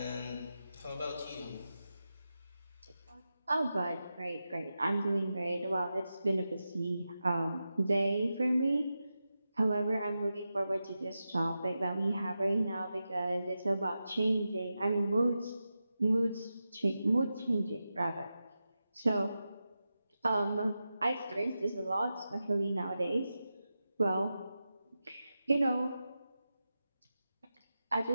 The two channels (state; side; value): inverted; both; correlation -0.91